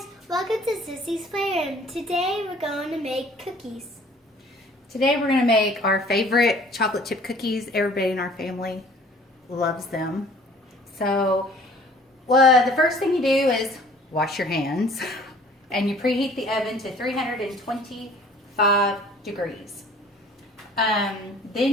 welcome to Sissy's Playroom. Today we're going to make cookies. Today we're going to make our favorite chocolate chip cookies. Everybody in our family loves them. So the first thing you do is wash your hands and you preheat the oven to 325 degrees.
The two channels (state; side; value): normal; both; correlation 0.52